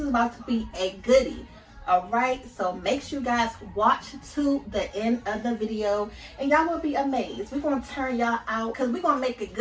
about to be a goodie. Alright, so make sure you guys watch to the end of the video and y'all will be amazed. We're going to turn y'all out because we're going to make it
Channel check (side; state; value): both; identical; correlation 1.00